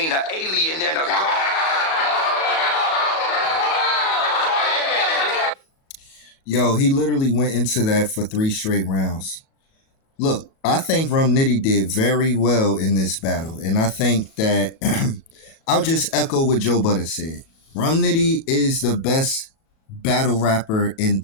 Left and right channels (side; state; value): right; late; 37 ms